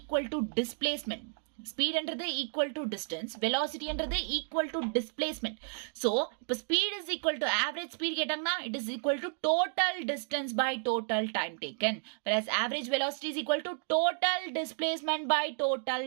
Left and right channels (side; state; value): left; silent; 56 dB below the other